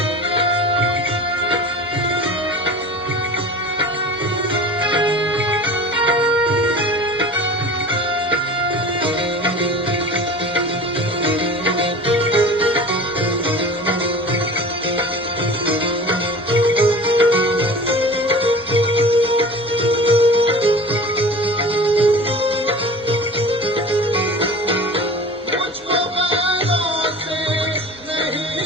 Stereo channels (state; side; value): normal; both; correlation 0.38